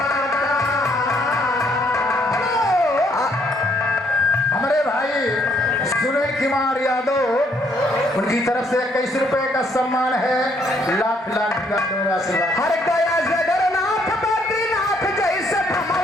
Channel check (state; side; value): normal; both; correlation 0.69